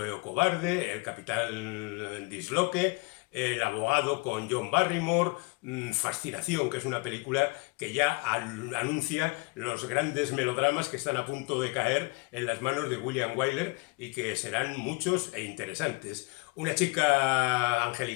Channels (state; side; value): quieter; right; 27.9 dB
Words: o Cobarde, El Capitán Disloque, El Abogado con John Barrymore, Fascinación, que es una película que ya anuncia los grandes melodramas que están a punto de caer en las manos de William Wyler y que serán muchos e interesantes. Una chica